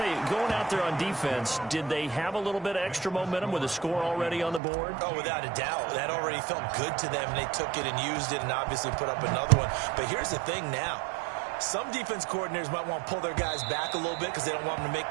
you, going out there on defense, did they have a little bit of extra momentum with a score already on the board? Oh, without a doubt. That already felt good to them, and they took it and used it and obviously put up another one. But here's the thing now. Some defense coordinators might want to pull their guys back a little bit because they don't want them to make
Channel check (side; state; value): left; drops out; at 4.6 s